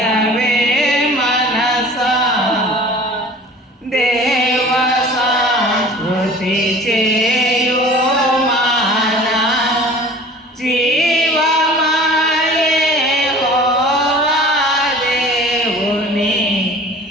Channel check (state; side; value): normal; both; correlation 0.44